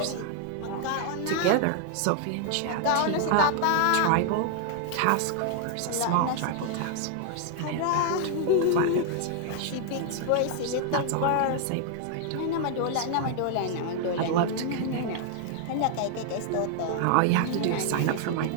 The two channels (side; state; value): both; different; correlation 0.00